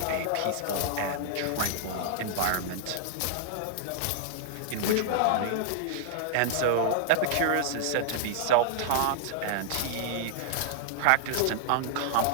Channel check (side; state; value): both; different; correlation -0.01